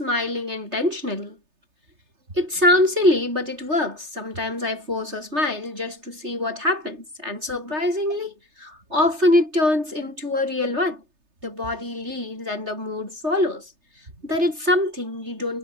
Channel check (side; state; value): left; late; 3.3 ms